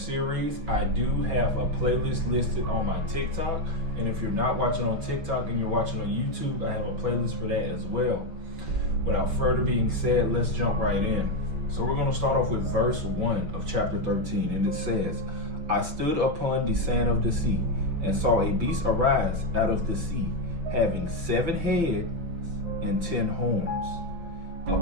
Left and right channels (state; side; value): late; left; 6.2 ms